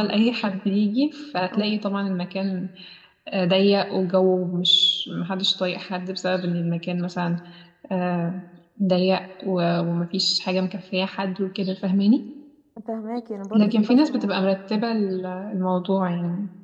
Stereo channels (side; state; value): both; identical; correlation 1.00